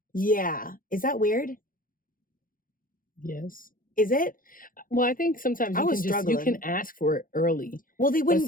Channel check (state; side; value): late; right; 0.40 ms